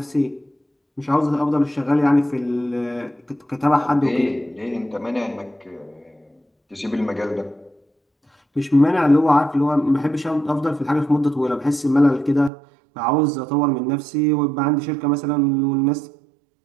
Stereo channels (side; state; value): left; drops out; at 12.5 s